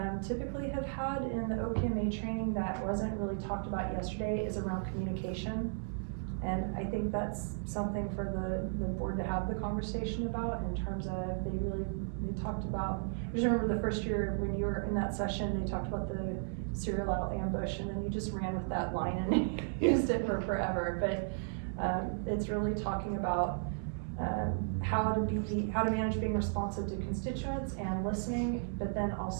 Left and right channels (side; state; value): left; silent; 55 dB below the other